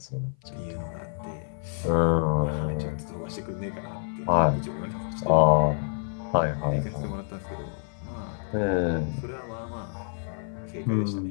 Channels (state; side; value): silent; right; 56 dB below the other